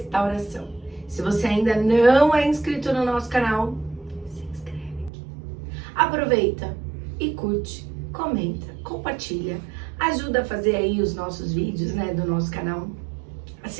Se você ainda não é inscrito no nosso canal, se inscreve aqui. Aproveita e curte, comenta, compartilha, ajuda a fazer aí os nossos vídeos, do nosso canal, a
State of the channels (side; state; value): left; drops out; at 5.1 s